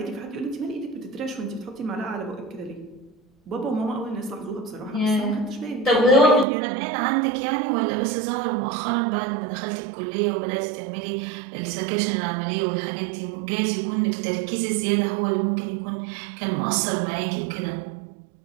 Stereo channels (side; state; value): left; drops out; at 6.5 s